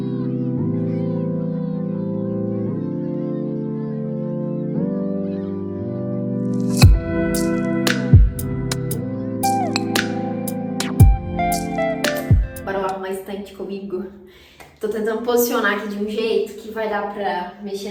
Estante comigo. Tô tentando posicionar aqui de um jeito que vai dar pra mexer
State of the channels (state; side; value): identical; both; correlation 1.00